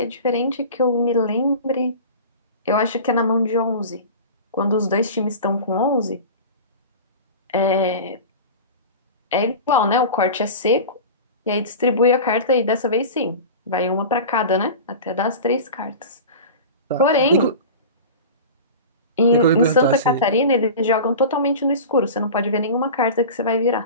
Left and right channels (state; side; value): inverted; both; correlation -0.33